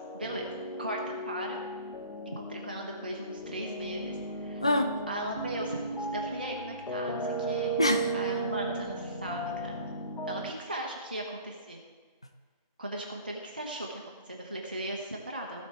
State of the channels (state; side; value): inverted; both; correlation -0.46